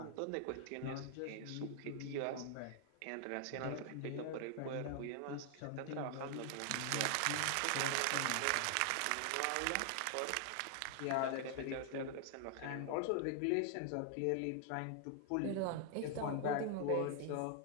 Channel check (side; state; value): both; different; correlation 0.00